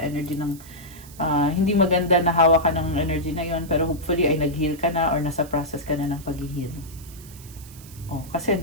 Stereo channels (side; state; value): right; noise; hiss, 20 dB below the sound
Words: ng hindi maganda na hawak ka ng energy na yon, pero hopefully ay nag-heal ka na or nasa process ka na ng pag-heal. Kasi